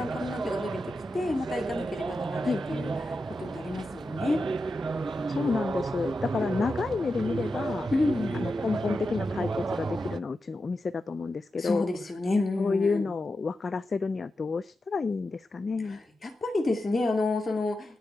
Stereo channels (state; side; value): normal; both; correlation 0.89